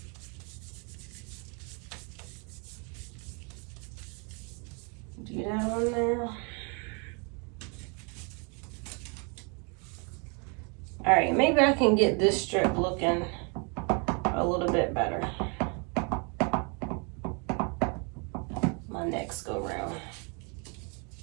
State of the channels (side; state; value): left; quieter; 34.8 dB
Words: do that on there. All right, maybe I can get this strip looking a little bit better my next go round.